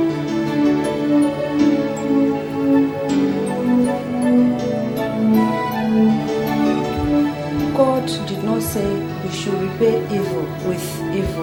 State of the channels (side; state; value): both; identical; correlation 1.00